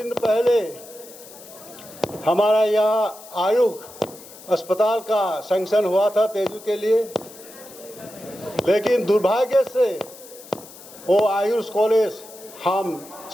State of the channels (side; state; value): left; noise; hiss, 18 dB below the sound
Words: पहले हमारा यहाँ आयुष अस्पताल का सैंक्शन हुआ था तेजू के लिए, लेकिन दुर्भाग्य से वो आयुष कॉलेज हम